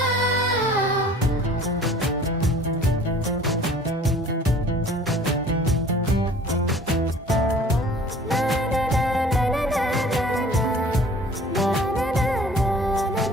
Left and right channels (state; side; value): normal; both; correlation 0.49